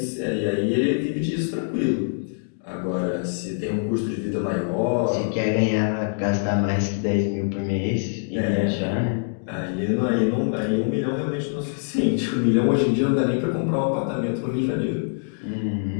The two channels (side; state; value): right; silent; digital silence